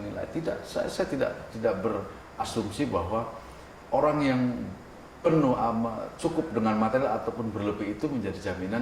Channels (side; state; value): both; identical; correlation 1.00